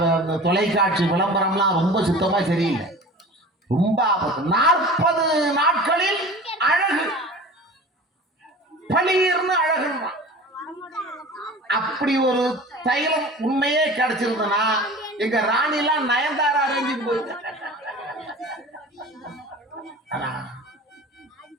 தொலைக்காட்சி விளம்பரம்லாம் ரொம்ப சுத்தமா சரியில்லை, ரொம்ப ஆபத்து. 40 நாட்களில் அழகு, பளீர்னு அழகு. அப்படி ஒரு தைலம் உண்மையே கிடைச்சிருந்தனா எங்க ராணிலாம் நயன்தாரா அரேஞ்சுக்கு போயிட்டு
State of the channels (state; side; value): normal; both; correlation 0.39